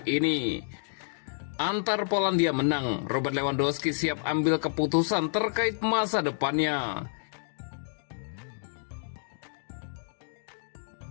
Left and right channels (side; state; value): right; silent; digital silence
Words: ini. Antar Polandia menang, Robert Lewandowski siap ambil keputusan terkait masa depannya.